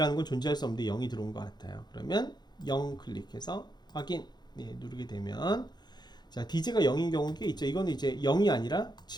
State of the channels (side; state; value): right; late; 0.21 ms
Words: 건 존재할 수 없는데 0이 들어온 것 같아요. 그러면 0 클릭해서 확인 누르게 되면 자, DJ가 0인 경우는 꽤 있죠. 이거는 이제 0이 아니라